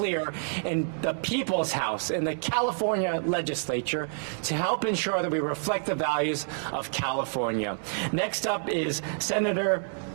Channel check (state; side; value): silent; left; digital silence